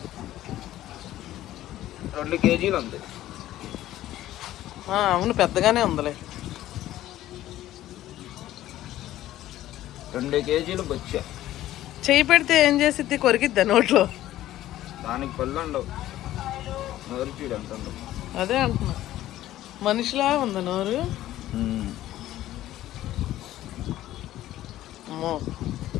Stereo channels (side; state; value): right; quieter; 14.1 dB